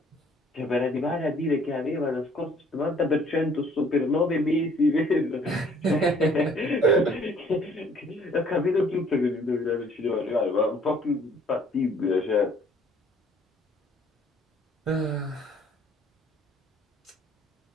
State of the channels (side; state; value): both; normal; correlation 0.58